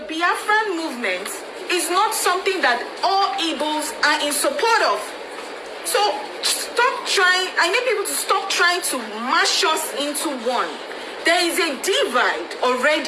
movement is not something that all Igbos are in support of. So stop trying, I need people to stop trying to mash us into one. There is a divide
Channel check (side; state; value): both; identical; correlation 1.00